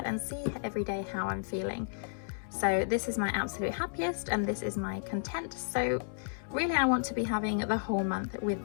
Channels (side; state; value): right; silent; digital silence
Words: and see every day how I'm feeling. So this is my absolute happiest, and this is my content. So really I want to be having the whole month